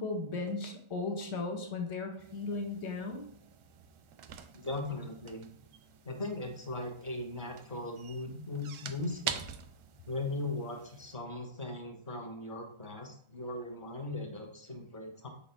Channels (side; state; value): left; late; 1.4 ms